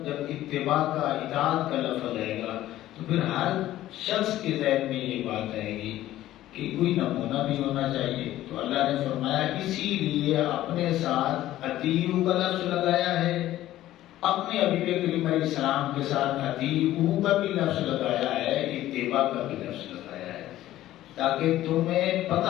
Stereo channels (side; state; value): right; quieter; 14.2 dB